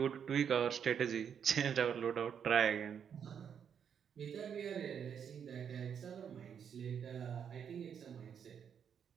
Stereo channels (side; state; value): left; quieter; 7.8 dB